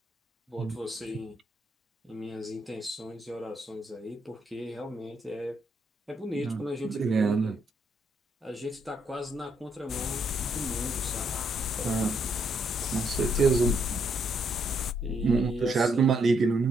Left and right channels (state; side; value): normal; both; correlation 0.74